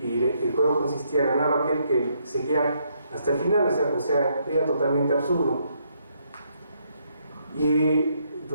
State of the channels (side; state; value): both; inverted; correlation -0.73